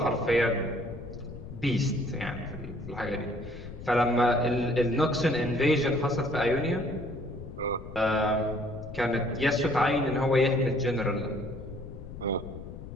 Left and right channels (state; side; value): noise; left; rumble, 12 dB below the sound